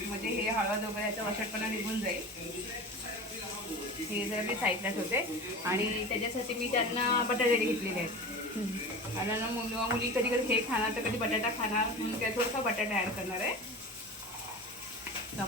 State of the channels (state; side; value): normal; both; correlation 0.32